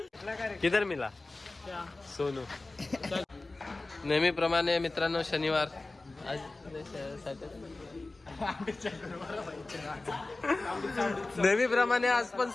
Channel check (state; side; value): quieter; right; 3.2 dB